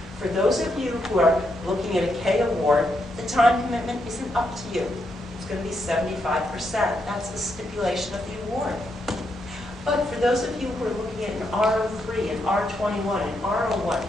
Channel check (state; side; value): normal; both; correlation 0.80